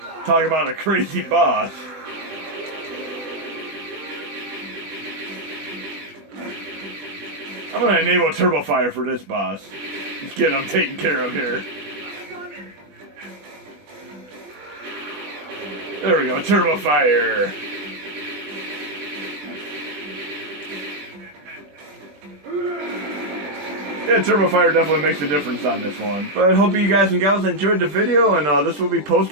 Talk about a crazy boss. I'm gonna enable Turbo Fire for this boss. Just get him taken care of here. There we go, Turbo Fire. Yeah, Turbo Fire definitely makes a difference on this one. But I hope you guys and gals enjoyed the video, and this will be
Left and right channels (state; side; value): late; left; 20 ms